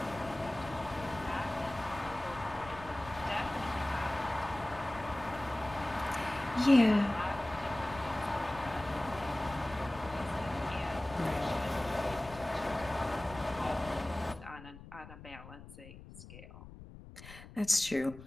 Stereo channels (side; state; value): left; noise; rumble, 16 dB below the sound